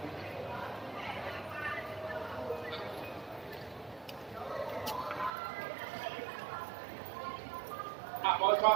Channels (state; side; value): drops out; left; at 5.3 s